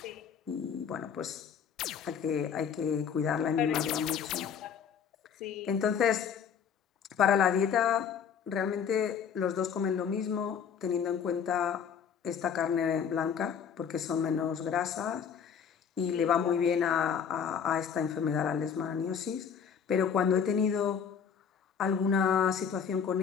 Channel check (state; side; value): quieter; right; 7.3 dB